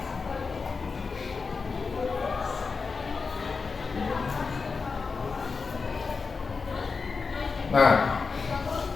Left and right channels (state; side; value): quieter; right; 4.7 dB